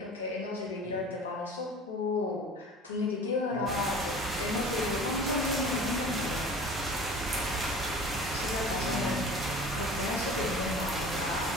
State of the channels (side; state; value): both; normal; correlation 0.41